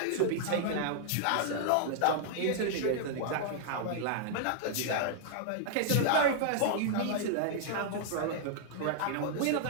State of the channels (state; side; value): different; both; correlation -0.01